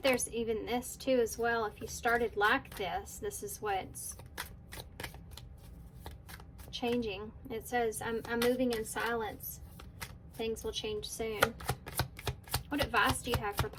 there's even this too as well, if you started like this, this is what's changing. It says, I'm moving in silence. Things will change soon. What advice do you have for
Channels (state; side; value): identical; both; correlation 1.00